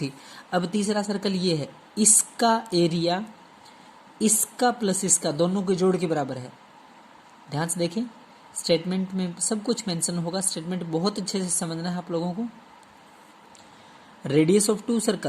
अब तीसरा सर्कल ये है, इसका एरिया इसका प्लस इसका दोनों के जोड़ के बराबर है। ध्यान से देखें, स्टेटमेंट में सब कुछ मेंशन होगा, स्टेटमेंट बहुत अच्छे से समझना है आप लोगों को। रेडियस ऑफ 2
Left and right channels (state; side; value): identical; both; correlation 1.00